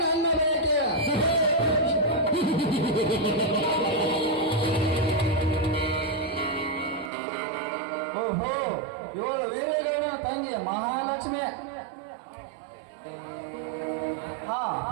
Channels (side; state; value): left; drops out; at 7.1 s